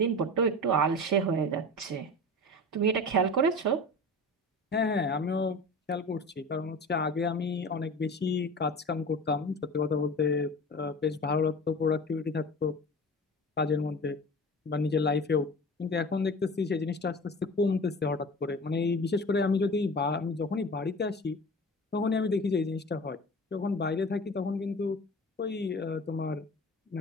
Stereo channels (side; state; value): both; normal; correlation 0.35